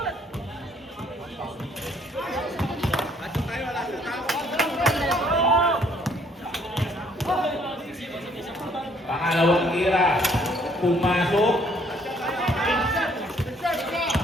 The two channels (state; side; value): normal; both; correlation 0.64